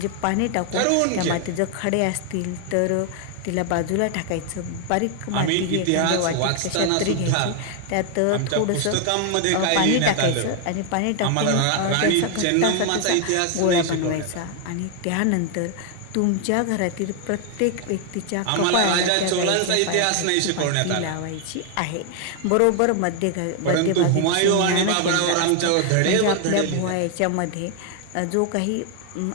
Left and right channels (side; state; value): both; different; correlation 0.00